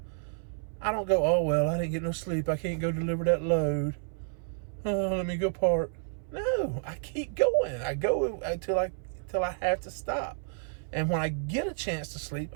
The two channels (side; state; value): left; silent; 58 dB below the other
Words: I don't go, oh, well, I didn't get no sleep. I can't go deliver that load. Oh, let me go park. No, I keep going. I go until I have to stop. And when I get a chance to sleep,